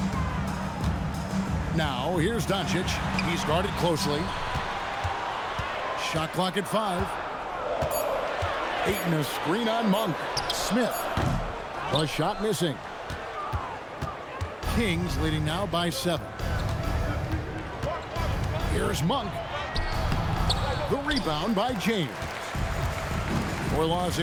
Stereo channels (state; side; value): identical; both; correlation 1.00